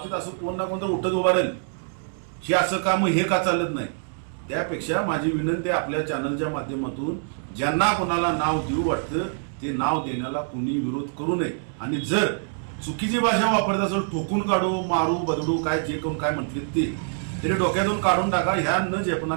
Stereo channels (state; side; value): silent; left; digital silence